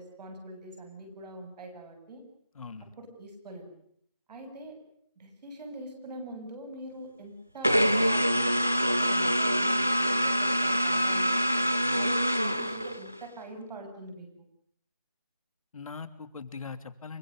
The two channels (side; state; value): both; inverted; correlation -0.92